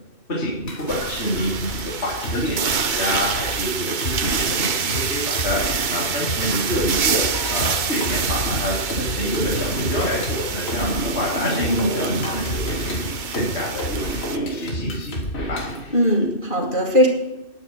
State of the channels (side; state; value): right; late; 2.3 ms